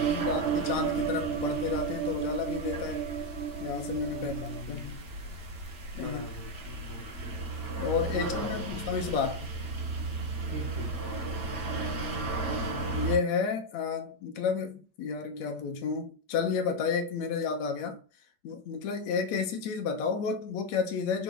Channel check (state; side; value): late; right; 8.7 ms